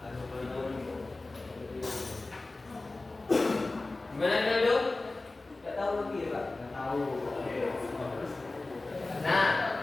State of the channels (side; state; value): right; quieter; 3.2 dB